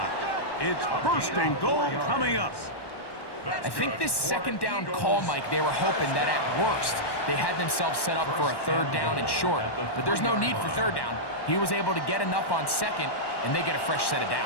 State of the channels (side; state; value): right; late; 1.1 ms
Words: It's 1st and goal coming up. I think this 2nd down call, Mike, they were hoping that at worst they had themselves set up for a 3rd down and short. But there's no need for 3rd down. He was able to get enough on 2nd, and they get a fresh set of